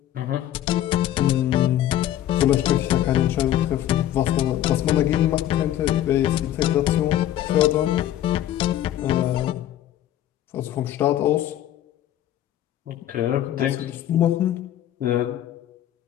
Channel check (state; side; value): quieter; right; 12.2 dB